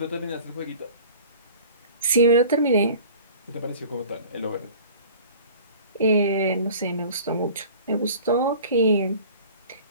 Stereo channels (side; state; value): both; inverted; correlation -0.44